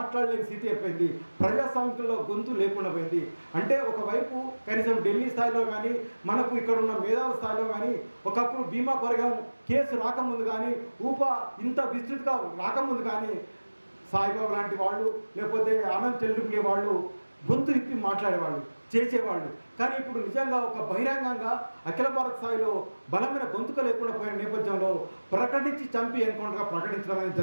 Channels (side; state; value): both; inverted; correlation -1.00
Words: స్థితి అయిపోయింది. ప్రజాస్వామ్యంలో గొంతు లేకుండా పోయింది. అంటే ఒకవైపు కనీసం ఢిల్లీ స్థాయిలో కానీ, మనకు ఇక్కడ ఉన్న మేధావుల స్థాయిలో కానీ, ఒకప్పుడు భీమా కొరగం కేసు రాకముందు కానీ, ఇంత విస్తృతిగా రాకముందు కానీ సాయిబాబు లాంటి వాళ్ళు, లేకపోతే ఆనంద్ చెల్లుకునే వాళ్ళు గొంతు ఇప్పి మాట్లాడేవాళ్ళు, చేసేవాళ్ళు. కానీ ఇప్పుడు నిజంగా ఒక బహిరంగంగా అఖిల భారత స్థాయిలో బలమైన గొంతుక లేకుండా పోయిన నేపథ్యంలో ప్రకటించి చంపి ఎన్కౌంటర్గా ప్రకటించడం అనేది